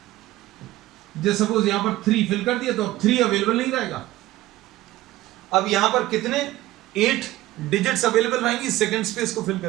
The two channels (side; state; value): left; quieter; 16.4 dB